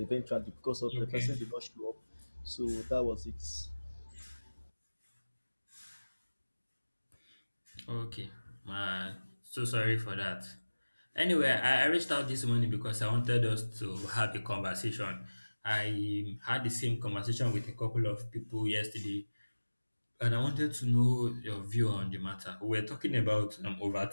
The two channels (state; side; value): inverted; both; correlation -1.00